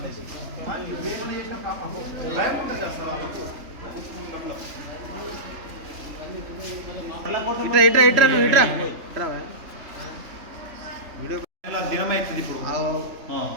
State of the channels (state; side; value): late; left; 3.4 ms